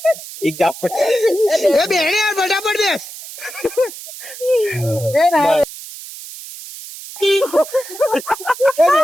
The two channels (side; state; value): right; noise; hiss, 13 dB below the sound